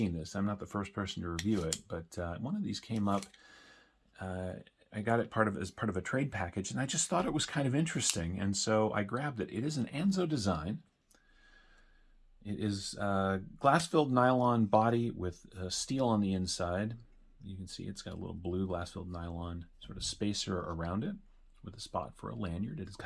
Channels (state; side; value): identical; both; correlation 1.00